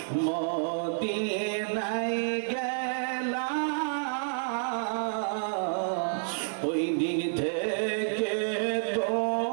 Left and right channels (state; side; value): silent; left; 58 dB below the other